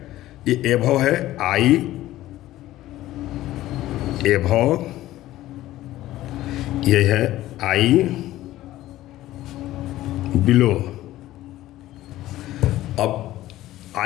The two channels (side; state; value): right; quieter; 15.2 dB